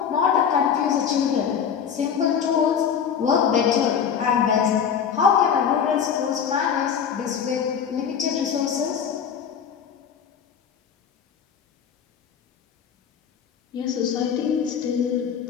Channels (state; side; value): quieter; right; 7.6 dB